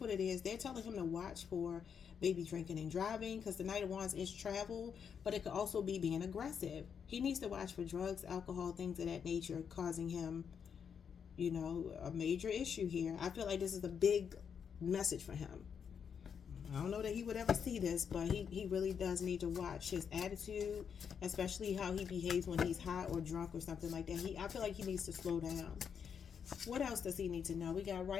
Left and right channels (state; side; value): quieter; right; 7.2 dB